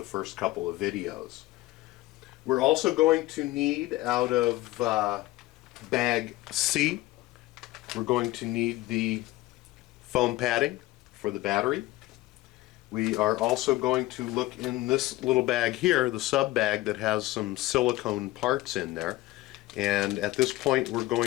first couple of videos. We're also going to need, out of bag C, we're going to need the foam padding for the battery. We are also going to look in this little bag here, the sub bag, that has some silicone parts in there. And at this point we're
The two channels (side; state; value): right; quieter; 18.0 dB